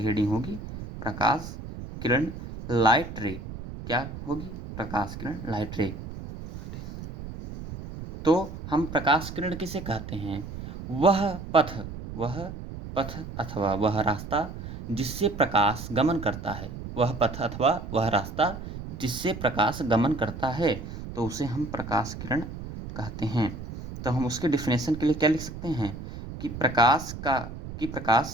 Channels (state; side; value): noise; right; rumble, 10 dB below the sound